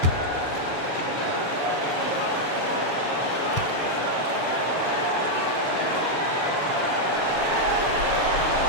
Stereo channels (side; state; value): right; late; 7.0 ms